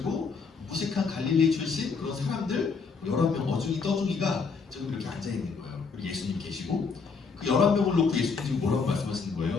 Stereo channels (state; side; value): quieter; right; 5.1 dB